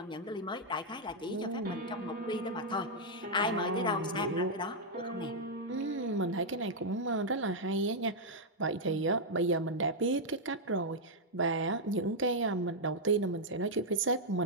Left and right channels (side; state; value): both; normal; correlation -0.04